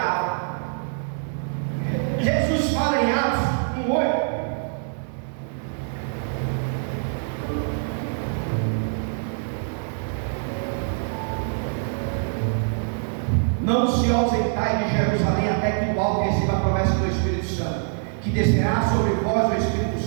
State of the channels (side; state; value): left; silent; digital silence